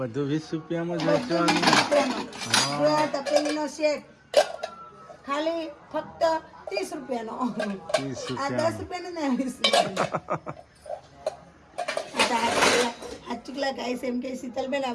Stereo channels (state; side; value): identical; both; correlation 1.00